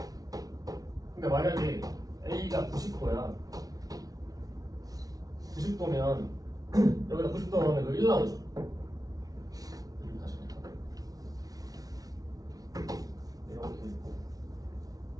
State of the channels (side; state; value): left; late; 0.18 ms